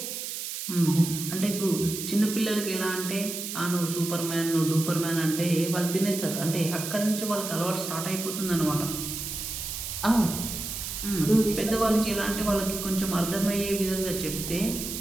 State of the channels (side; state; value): right; noise; hiss, 6 dB below the sound